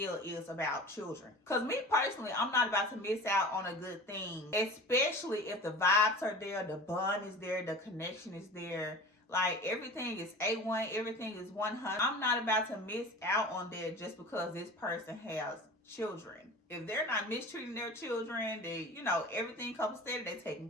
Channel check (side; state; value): both; normal; correlation 0.37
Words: is about children. Because me personally, I'm not about to miss out on a good thing. Especially if the vibes are there, the bond is there, the connection is there. Like, everything is A1, everything is 100. I'm not about to miss out on that just because this person has children. If they're not mistreating their children, they, you know, everything comes steady, they taken